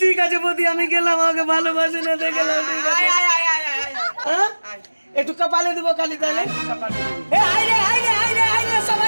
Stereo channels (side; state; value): both; inverted; correlation -1.00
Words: ঠিক আছে বৌদি আমি গেলাম আমাকে ভালোবাসে না দেখলাম ঠিক আছে আয় আয় আয় আয় আয় আয়। হ্যাঁ? আয়। একটু কপালে দেবো খালি তাহলে কপালে দেবো। এ আয় রে